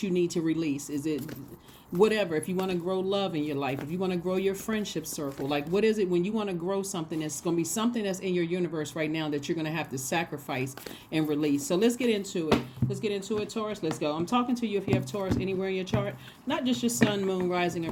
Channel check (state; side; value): identical; both; correlation 1.00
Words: you need to release? Is it whatever? If you want to grow love in your life, if you want to grow your friendship circle, like what is it when you want to grow something? It's going to be something that's in your universe right now that you're going to have to sacrifice and release. So let's get into it. Taurus. Let's go. I'm talking to you if you have Taurus anywhere in your chart, not just your sun, moon, rising,